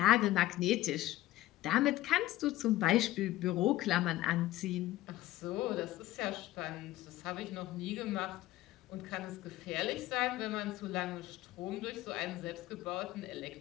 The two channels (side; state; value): right; quieter; 15.9 dB